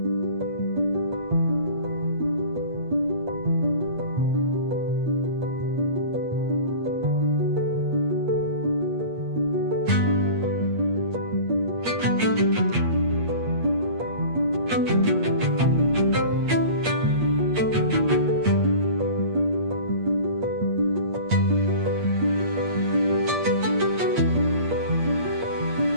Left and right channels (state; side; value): late; left; 8.5 ms